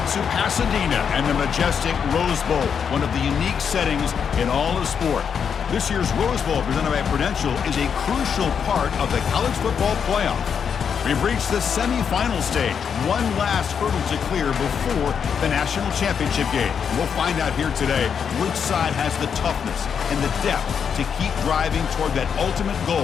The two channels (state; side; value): quieter; right; 7.1 dB